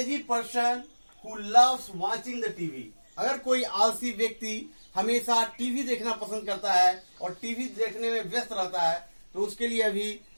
person who loves watching the TV. अगर कोई आलसी व्यक्ति हमेशा टीवी देखना पसंद करता है और टीवी देखने में व्यस्त रहता है तो उसके लिए अभी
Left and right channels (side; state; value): both; inverted; correlation -1.00